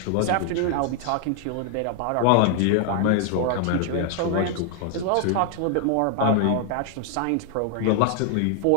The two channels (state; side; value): different; both; correlation 0.00